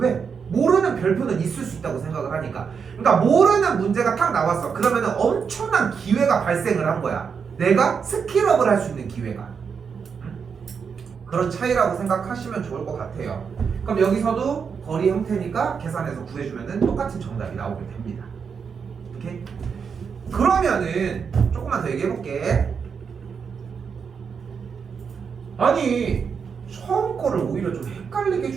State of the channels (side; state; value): left; quieter; 6.2 dB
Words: 모르는 별표는 있을 수 있다고 생각을 하니까. 그러니까 모르는 문제가 딱 나왔어. 그러면은 엄청난 기회가 발생을 한 거야. 내가 스킬업을 할 수 있는 기회가. 그런 차이라고 생각하시면 좋을 것 같아요. 그럼 여기서도 거리 형태니까 계산해서 구해주면은 똑같은 정답이 나오게 됩니다. 오케이? 그러면은 조금만 더 얘기해볼게. 아니 처음 거를 오히려 좀 헷갈리게